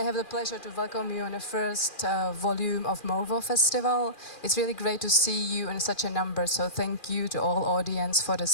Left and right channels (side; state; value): right; late; 2.4 ms